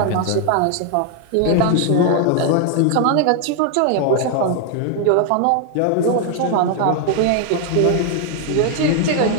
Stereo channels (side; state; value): both; different; correlation 0.00